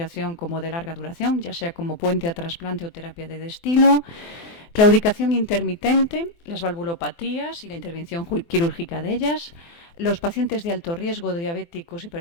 como de larga duración, ya sea como puente a trasplante o terapia de destino. Claudicación intermitente, las valvulopatías y la intervención quirúrgica de ellas, los pacientes de alto riesgo de diabéticos,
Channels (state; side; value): late; right; 24 ms